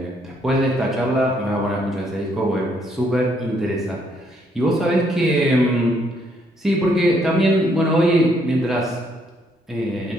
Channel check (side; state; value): both; normal; correlation 0.70